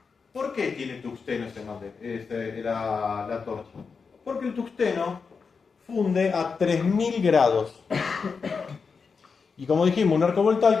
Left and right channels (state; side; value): quieter; right; 5.3 dB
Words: ¿Por qué tiene tungsteno la torcha? Porque el tungsteno funde a 3000 grados. Y como dijimos, un arco